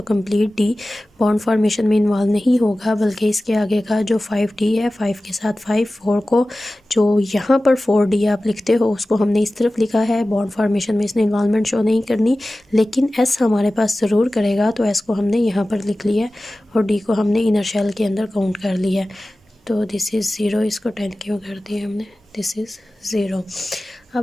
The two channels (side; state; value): both; normal; correlation 0.96